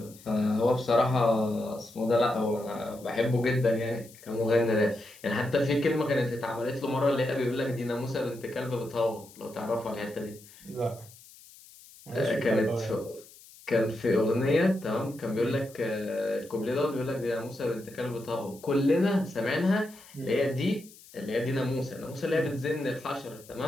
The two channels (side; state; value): left; noise; hiss, 22 dB below the sound